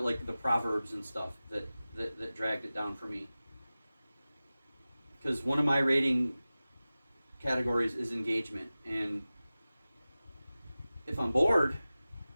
proverbs and stuff that dragged it down for me. Because one of my rating categories is engagement, and if I'm bored,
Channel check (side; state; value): both; inverted; correlation -0.97